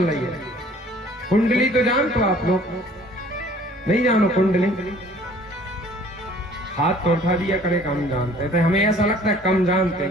रही है। कुंडली तो जानते हो आप लोग? नहीं जानो कुंडली? हाथ तो उठा दिया करे कम जानते थे, हमें ऐसा लगता है कम जानते।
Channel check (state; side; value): normal; both; correlation 0.53